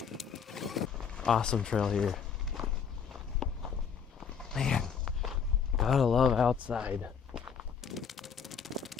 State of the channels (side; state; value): right; quieter; 6.8 dB